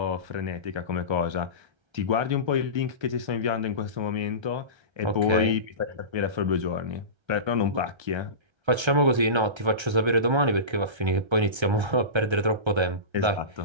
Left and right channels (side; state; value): left; late; 1.3 ms